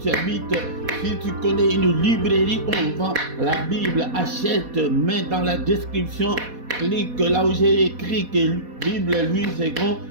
habites. Si tu connais une librairie où on vend la Bible, achète, mets dans la description, clique là où j'ai écrit que Bible Louis II,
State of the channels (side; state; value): left; late; 4.2 ms